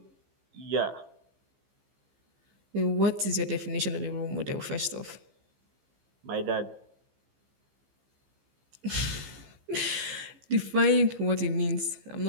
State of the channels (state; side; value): late; left; 15 ms